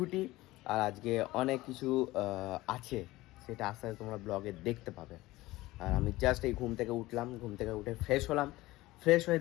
আর আজকে অনেক কিছু আছে, সেটা আস্তে আস্তে তোমরা ব্লগে দেখতে পাবে। আর আমি জাস্ট এই ঘুম থেকে উঠলাম, ঘুম থেকে উঠে ফ্রেশ হলাম, ফ্রেশ হয়ে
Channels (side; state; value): right; quieter; 18.6 dB